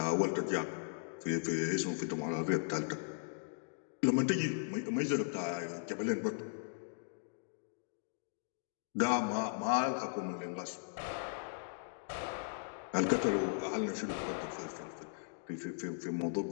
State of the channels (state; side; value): silent; right; digital silence